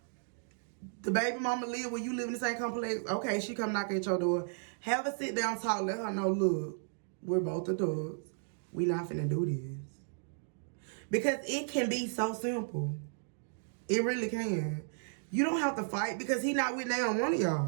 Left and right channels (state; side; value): silent; left; digital silence